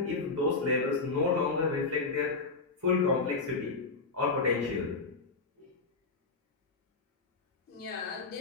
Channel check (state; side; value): quieter; right; 4.1 dB